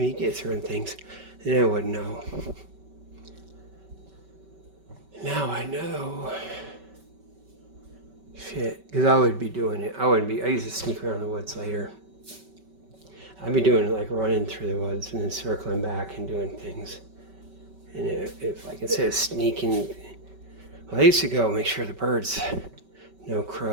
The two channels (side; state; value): left; late; 5.2 ms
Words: you get certain things, and I wouldn't know. Now I know. Shit, because I would be doing it. I used to sneak around the woods later. I'd be doing it like running through the woods and then circling back and doing things. And if like instead of sneaking, well, I used to go make sure the birds, no